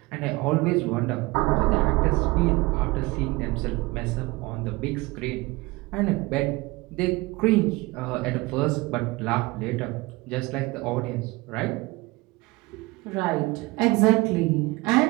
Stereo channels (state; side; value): quieter; left; 22.6 dB